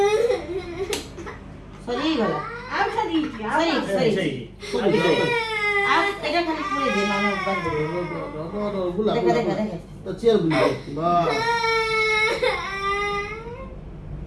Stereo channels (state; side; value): identical; both; correlation 1.00